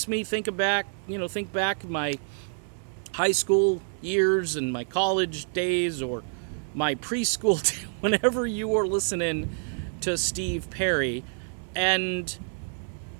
me think back my high school years and my college days, or my preschool whenever you were listening to Steve Perry. And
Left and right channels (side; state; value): left; silent; 60 dB below the other